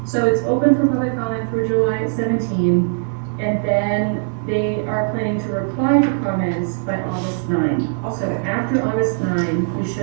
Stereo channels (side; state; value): left; silent; 66 dB below the other